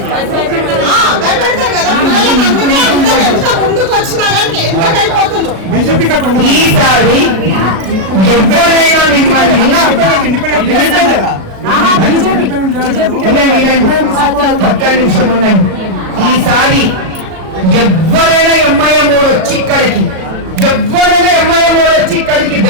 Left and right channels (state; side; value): late; left; 37 ms